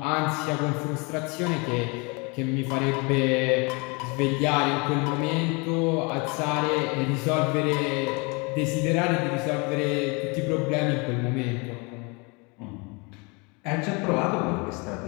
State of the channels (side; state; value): right; quieter; 29.6 dB